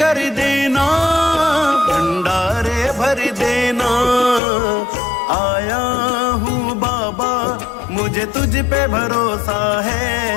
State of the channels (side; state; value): right; drops out; at 4.4 s